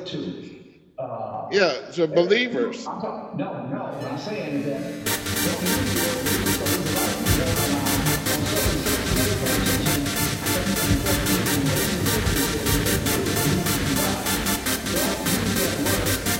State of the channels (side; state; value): both; identical; correlation 1.00